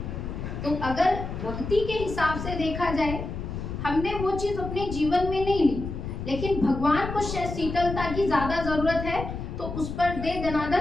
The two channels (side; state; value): left; noise; rumble, 6 dB below the sound